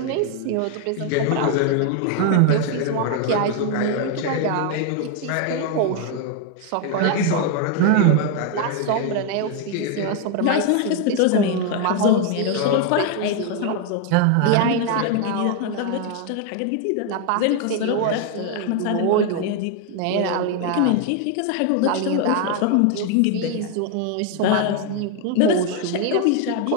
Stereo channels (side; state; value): both; different; correlation 0.01